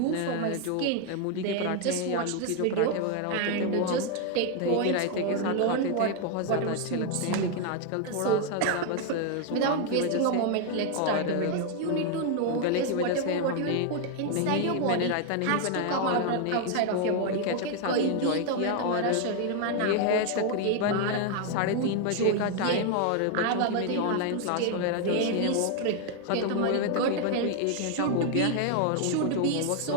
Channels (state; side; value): different; both; correlation 0.00